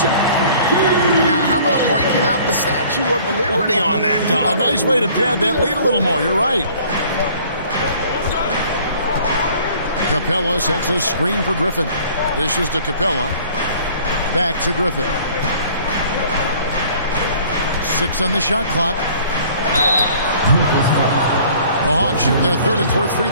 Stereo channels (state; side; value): inverted; both; correlation -0.53